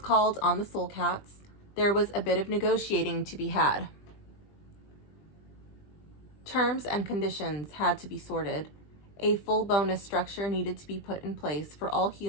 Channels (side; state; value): right; late; 20 ms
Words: called on the Soul Cats, there was a bit of negotiating to be had. Terms and conditions had to be sorted. A full bonus structure needed to be put in place for all